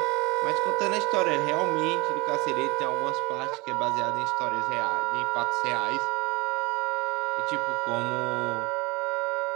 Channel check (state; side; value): quieter; left; 25.1 dB